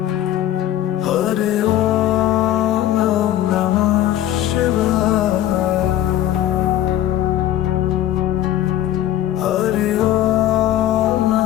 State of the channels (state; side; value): quieter; right; 12.8 dB